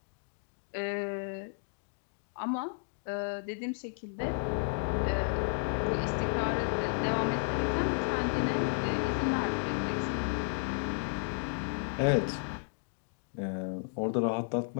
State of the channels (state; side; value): silent; right; digital silence